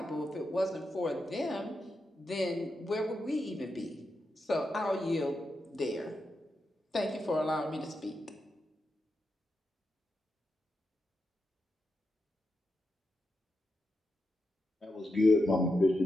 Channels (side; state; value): both; normal; correlation 0.86